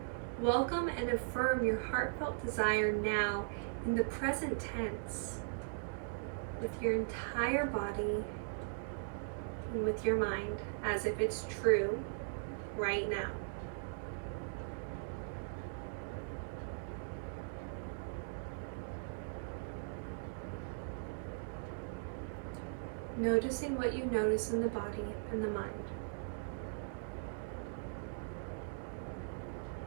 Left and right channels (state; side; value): silent; left; digital silence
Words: welcome and affirm your heartfelt desire now in the present tense, with your entire body and with your mind, as if it's true right now. Noticing what you notice in the body and the mind.